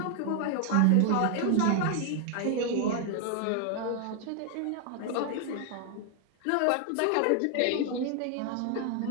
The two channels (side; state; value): both; different; correlation 0.00